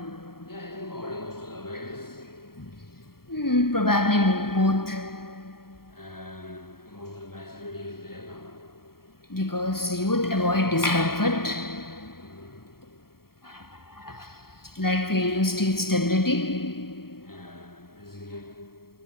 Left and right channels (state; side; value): late; right; 0.93 ms